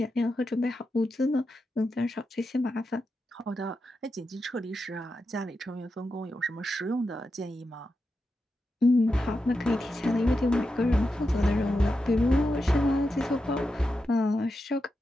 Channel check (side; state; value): both; normal; correlation 0.88